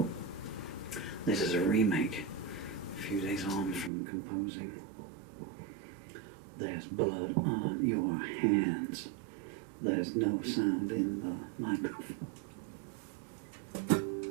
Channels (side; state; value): left; drops out; at 3.9 s